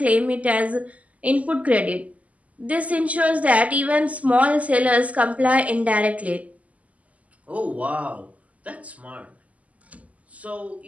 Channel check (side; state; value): left; late; 0.071 ms